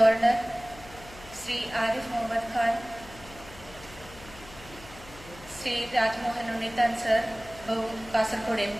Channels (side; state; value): left; noise; hum, 19 dB below the sound